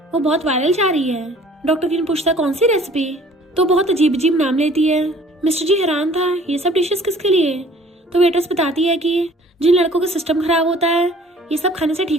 वो बहुत वायरल जा रही है। डॉक्टर किन पूछता कौन सी रेसिपी, तो बहुत अजीब अजीब नाम लेती है। मिस्टर जी हैरान था ये सब डिशेस किसके लिए, तो वेटरेस बताती है कि जिन लड़कों का सिस्टम खराब होता है ये सब खाने से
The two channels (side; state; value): both; normal; correlation 0.53